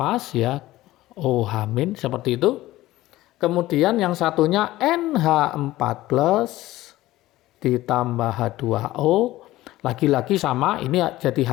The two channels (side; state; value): right; quieter; 16.5 dB